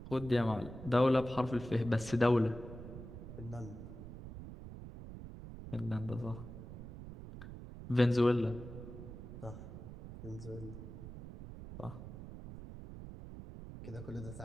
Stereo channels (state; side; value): noise; right; rumble, 12 dB below the sound